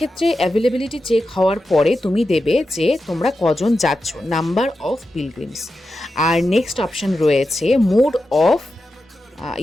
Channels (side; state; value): both; normal; correlation 0.90